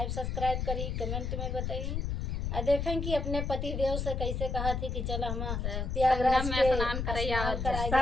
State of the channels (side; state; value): left; noise; rumble, 2 dB below the sound